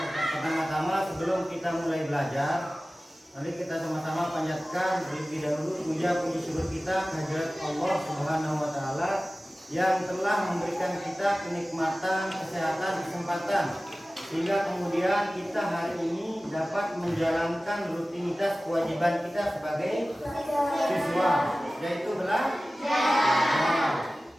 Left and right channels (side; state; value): both; normal; correlation 0.96